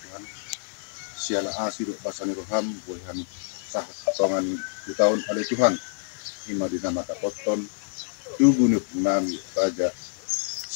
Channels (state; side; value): silent; right; digital silence